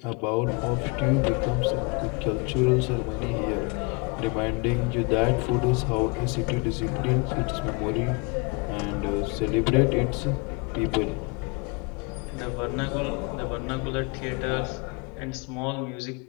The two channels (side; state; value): right; quieter; 29.9 dB